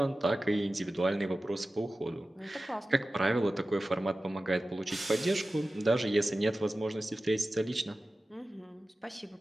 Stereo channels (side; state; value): both; normal; correlation 0.95